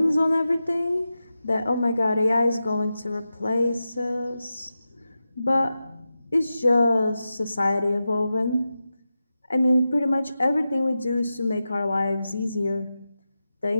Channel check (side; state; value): both; inverted; correlation -0.92